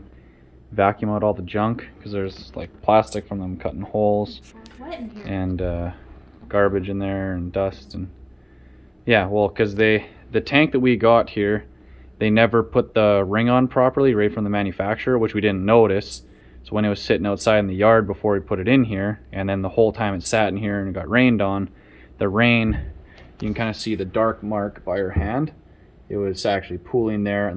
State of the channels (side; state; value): both; identical; correlation 1.00